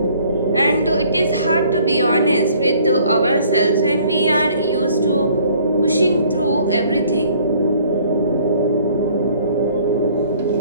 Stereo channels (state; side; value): inverted; both; correlation -0.58